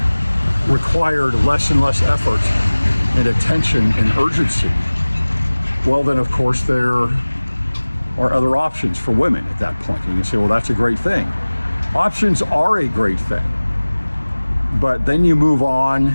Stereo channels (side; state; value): both; inverted; correlation -1.00